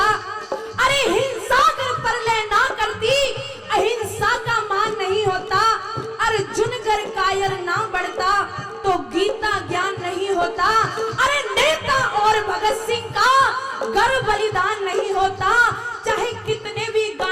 अरे हिंसा कर परलय ना करती अहिंसा का मान नहीं होता। अर्जुन कर कायर ना बढ़ता तो गीता ज्ञान नहीं होता। अरे नेता और भगत सिंह का गर्व बलिदान नहीं होता। चाहे कितने भी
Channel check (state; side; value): identical; both; correlation 1.00